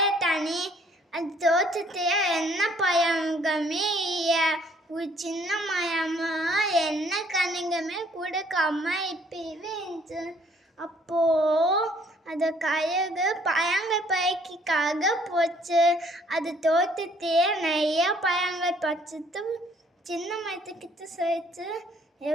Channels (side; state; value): both; normal; correlation 0.62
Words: அது தோட்டத்தில் என்ன பழங்களுமே இல்லை. ஒரு சின்ன மரமும் என்ன கனிகளுமே கொடுக்காம இப்பவே இருந்துச்சு. அப்போ அந்த கழுகு பழங்கள் பறிக்காக போச்சு. அது தோட்டத்தையே நிறைய பழங்கள் பறிச்சுட்டு சின்ன மரத்துக்கிட்ட சொல்லிச்சு,